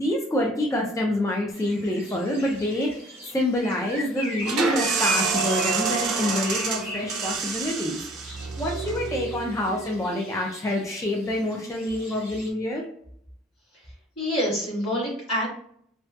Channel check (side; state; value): both; normal; correlation 0.52